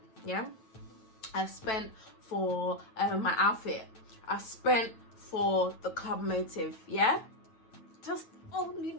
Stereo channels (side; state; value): right; late; 9.1 ms